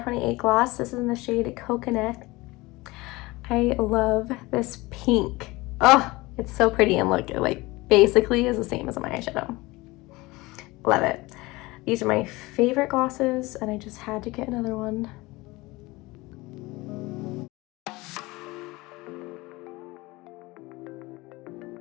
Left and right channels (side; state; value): right; quieter; 21.7 dB